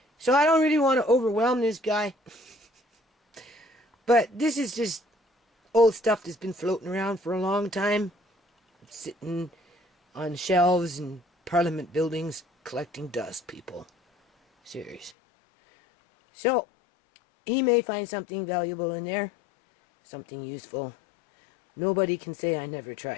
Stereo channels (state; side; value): drops out; right; at 15.2 s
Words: So I don't really want to overwhelm this guy. But this is just old stuff that's been floating around for a long time, sitting on shelves in Parliament buildings, collecting dust, people. Serious. So, he may find something valuable in there, something useful. Nobody can say I never